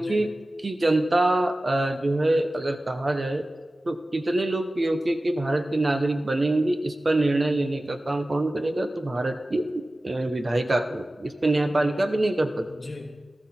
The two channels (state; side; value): normal; both; correlation 0.96